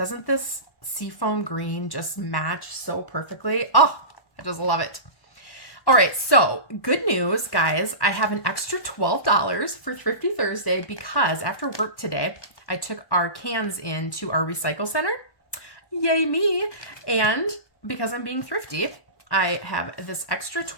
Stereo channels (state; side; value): late; right; 1.1 ms